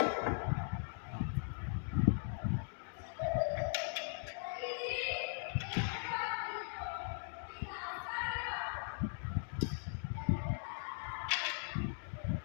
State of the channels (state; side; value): silent; right; digital silence